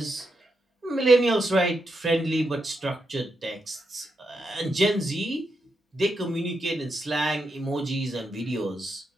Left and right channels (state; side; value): normal; both; correlation 0.84